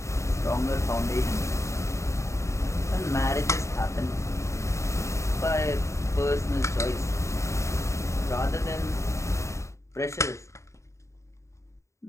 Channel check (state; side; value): late; right; 0.14 ms